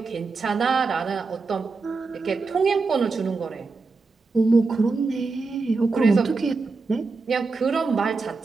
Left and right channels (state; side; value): quieter; left; 4.1 dB